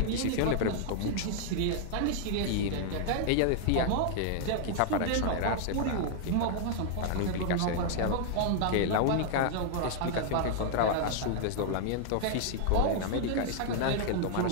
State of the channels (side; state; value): both; different; correlation 0.00